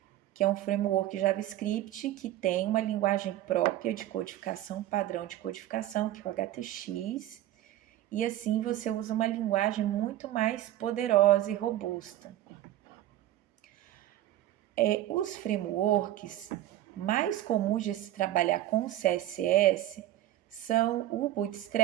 que é um framework JavaScript que tem uma linguagem própria de codificação, padrão de codificação, que é o HTX, e assim você usa uma linguagem muito mais poderosa e robusta. Os frameworks mais comuns de se trabalhar com CSS são o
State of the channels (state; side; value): quieter; left; 13.9 dB